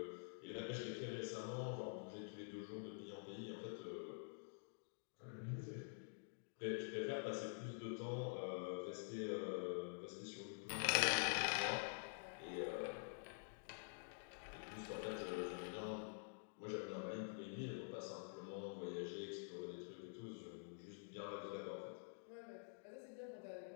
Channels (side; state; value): right; silent; digital silence